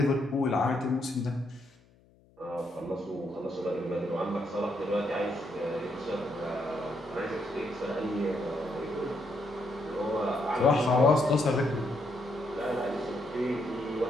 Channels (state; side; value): noise; left; hum, 30 dB below the sound